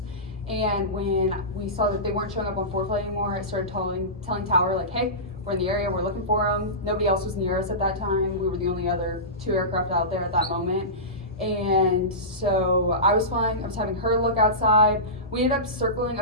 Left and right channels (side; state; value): both; normal; correlation -0.20